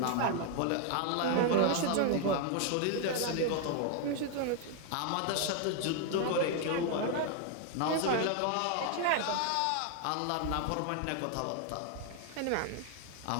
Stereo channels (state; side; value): different; both; correlation 0.00